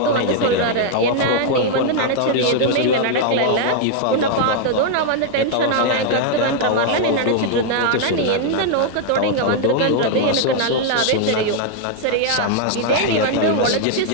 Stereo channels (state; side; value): different; both; correlation 0.00